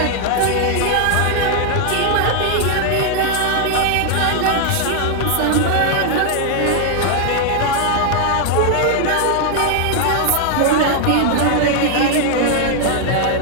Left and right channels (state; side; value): different; both; correlation 0.00